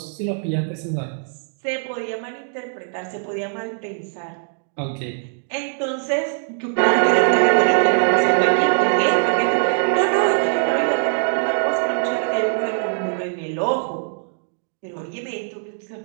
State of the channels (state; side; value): silent; left; digital silence